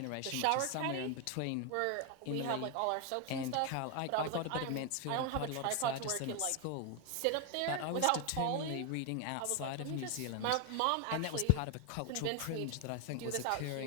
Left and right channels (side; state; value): both; different; correlation 0.01